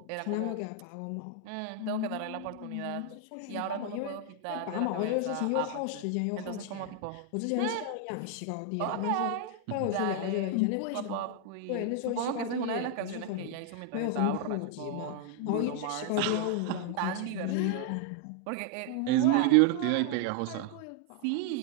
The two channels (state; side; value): different; both; correlation 0.00